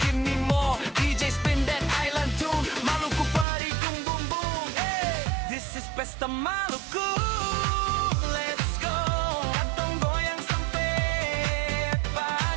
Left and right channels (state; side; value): drops out; left; at 3.5 s